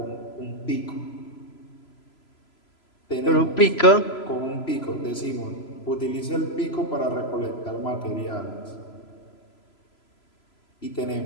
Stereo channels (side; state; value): right; late; 3.0 ms